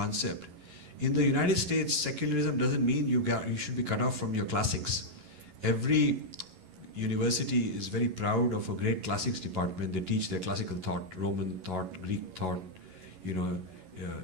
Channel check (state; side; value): late; left; 11 ms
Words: In the United States, secularism doesn't mean you should be cut off from your classics. Every university is very proud of a great classics department. They teach their classical thought, Roman thought, Greek thought,